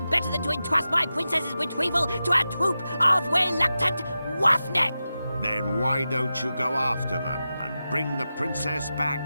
better than to entrust my princess's retrieval to a troop of reluctant roughneck. Then why don't you go after them and bring the princess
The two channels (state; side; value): inverted; both; correlation -0.92